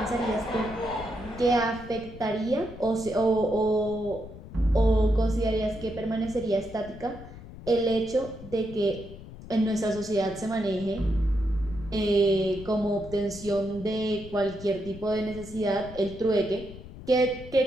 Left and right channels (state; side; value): noise; left; rumble, 15 dB below the sound